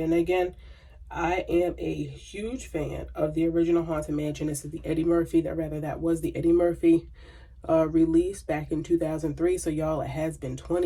And again, I am a huge fan of the original Haunted Mansion. This is the Eddie Murphy, that was the Eddie Murphy release back in 2003. So y'all, it has been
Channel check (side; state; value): both; identical; correlation 1.00